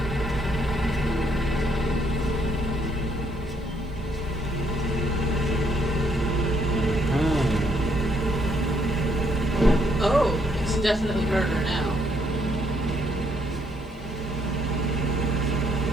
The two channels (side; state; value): both; normal; correlation 0.71